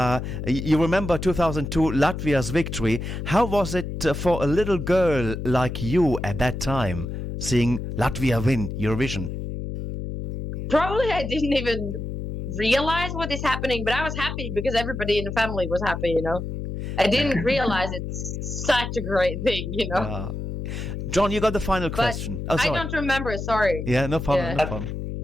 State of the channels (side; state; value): left; noise; hum, 5 dB below the sound